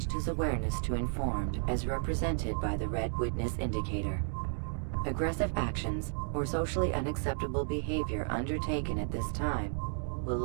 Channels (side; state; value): left; silent; digital silence